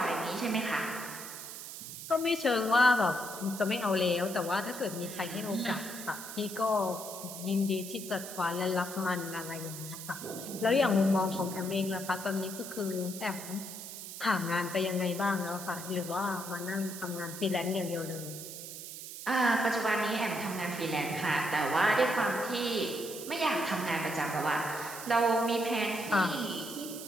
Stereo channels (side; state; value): right; noise; hiss, 10 dB below the sound